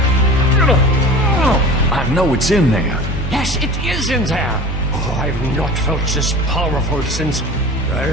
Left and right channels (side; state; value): both; normal; correlation 0.38